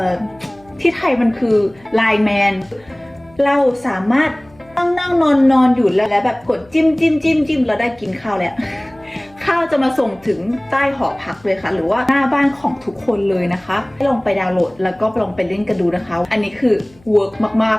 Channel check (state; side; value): noise; left; hum, 28 dB below the sound